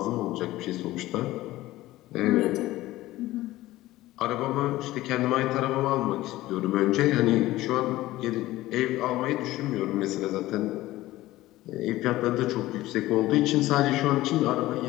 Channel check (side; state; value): right; quieter; 16.8 dB